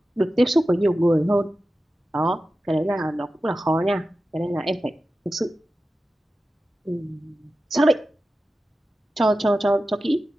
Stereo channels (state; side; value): normal; both; correlation 0.93